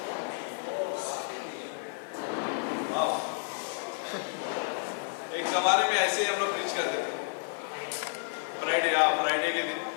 एक जमाने में ऐसे ही हम लोग प्रीच करते थे, फ्राइडे के दिन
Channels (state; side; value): silent; right; 57 dB below the other